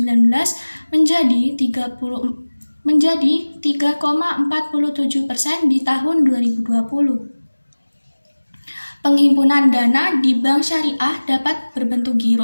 menjadi 3,47% di tahun 2020. Penghimpunan dana di bank syariah dapat berbentuk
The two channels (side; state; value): both; inverted; correlation -1.00